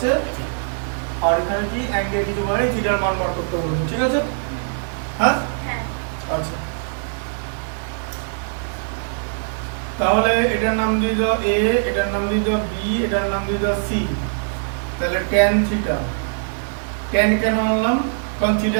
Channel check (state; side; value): silent; left; digital silence